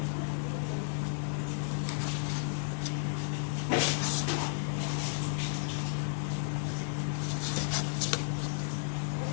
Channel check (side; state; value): right; silent; digital silence